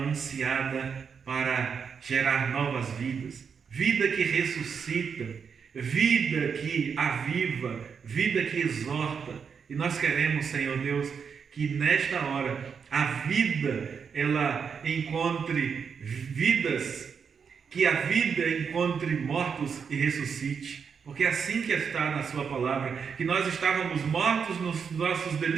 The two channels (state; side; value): quieter; left; 6.4 dB